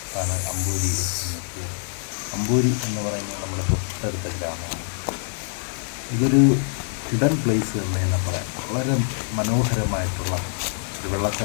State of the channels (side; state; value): right; silent; digital silence